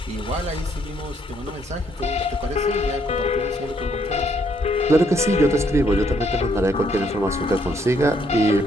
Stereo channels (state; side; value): normal; both; correlation 0.70